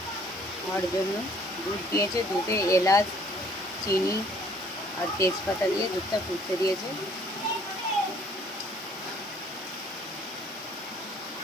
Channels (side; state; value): both; normal; correlation 0.59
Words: আমার জন্য। দুধ দিয়েছে, দুধে এলাচ চিনি আর তেজপাতা দিয়ে দুধটা ফুটতে দিয়েছে।